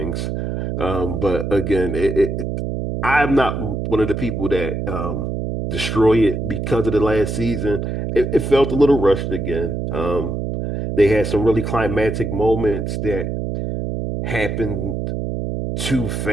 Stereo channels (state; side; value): noise; right; hum, 3 dB below the sound